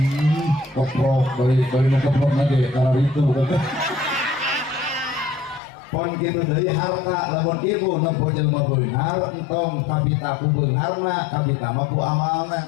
koprok bari nu koprok nage karena itu pon kitu deui harta lamun ibu nempuh jelema beunghar entong kabita ku beungharna kabita mah ku amalna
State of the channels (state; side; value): drops out; right; at 5.6 s